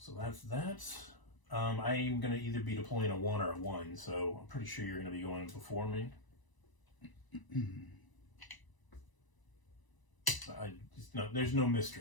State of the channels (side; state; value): right; late; 1.0 ms